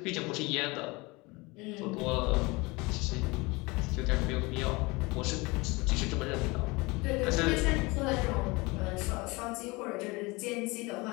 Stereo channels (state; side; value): quieter; right; 24.7 dB